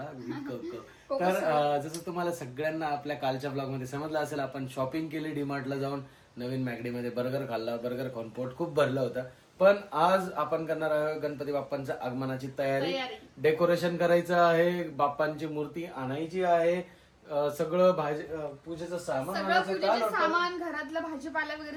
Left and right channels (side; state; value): both; identical; correlation 1.00